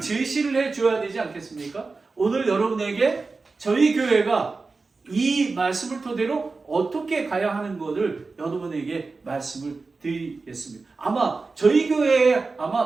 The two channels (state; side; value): quieter; left; 4.0 dB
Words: 해줘야 되지 않겠습니까? 오늘 여러분에게 저희 교회가 이 말씀을 토대로 어떻게 가야 하는 것을 여러분에게 말씀을 드리겠습니다. 아마 저희 교회에